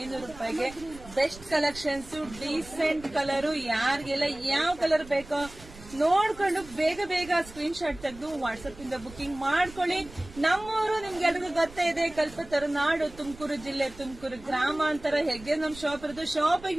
ರೂಪಾಯಿಗೆ. Best collections, decent colour. ಯಾರಿಗೆಲ್ಲ ಯಾವ ಕಲರ್ ಬೇಕೋ ನೋಡ್ಕೊಂಡು ಬೇಗ ಬೇಗ ಸ್ಕ್ರೀನ್ ಶಾಟ್ ತೆಗೆದು ವಾಟ್ಸ್ಆಪ್ ಇಂದ ಬುಕಿಂಗ್ ಮಾಡ್ಕೊಳ್ಳಿ. ನಮ್ಮೂರು ನಿಮ್ಗೆಲ್ರಿಗೂ ಗೊತ್ತೇ ಇದೆ, ಕಲ್ಪತರುನಾಡು, ತುಮಕೂರು ಜಿಲ್ಲೆ, ತುಮಕೂರು ಗ್ರಾಮಾಂತರ. ಹೇಗೆ ನಮ್ ಶಾಪ್ ಇರೋದು,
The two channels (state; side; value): noise; right; rumble, 18 dB below the sound